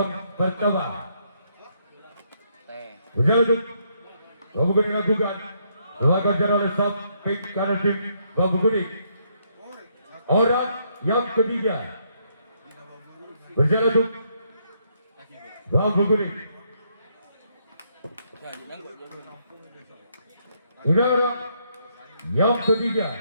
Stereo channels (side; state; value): both; inverted; correlation -0.73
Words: pertama. Jaratim Bambu Kuning lakukan lakukan jarak lesap pink kanan tim Bambu Kuning. Orang yang ketiga berjalan untuk Bambu Kuning. Ini orang yang ketiga